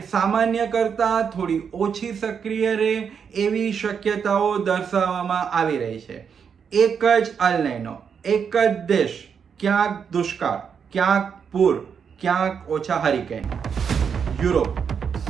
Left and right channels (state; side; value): quieter; left; 6.9 dB